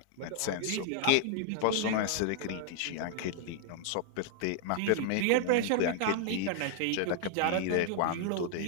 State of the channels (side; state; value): both; different; correlation -0.01